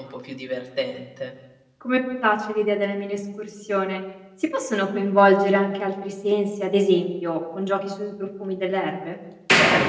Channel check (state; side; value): identical; both; correlation 1.00